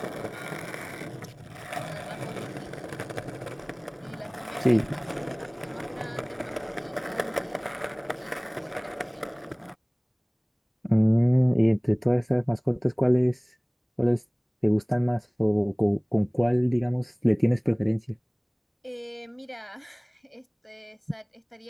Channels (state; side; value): identical; both; correlation 1.00